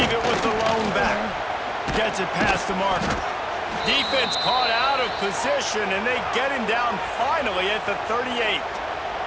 it with the lone back. Gets it past the marker. Defense caught out of position, and they get him down finally at the 38.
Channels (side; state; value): both; identical; correlation 1.00